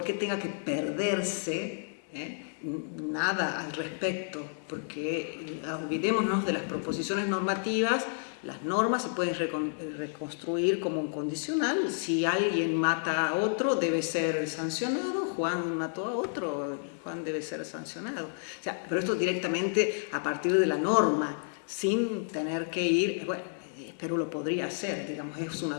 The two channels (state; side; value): silent; right; digital silence